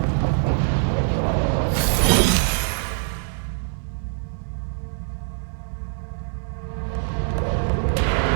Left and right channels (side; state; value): left; silent; digital silence